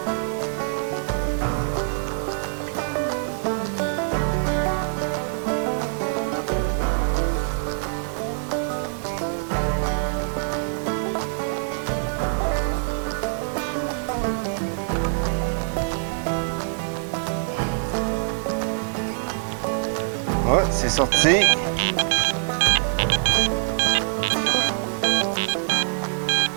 Ah, c'est sorti.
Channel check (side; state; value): left; silent; 62 dB below the other